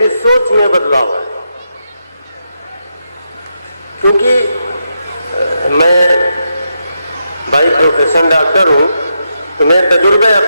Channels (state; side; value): inverted; both; correlation -0.83